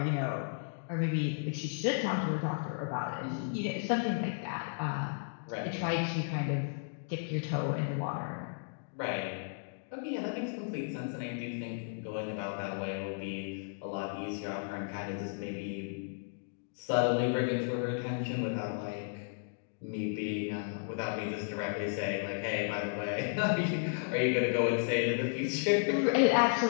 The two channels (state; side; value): silent; right; digital silence